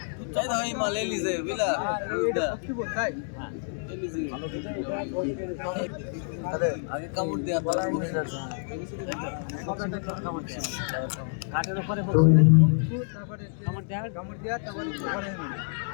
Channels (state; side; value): silent; right; digital silence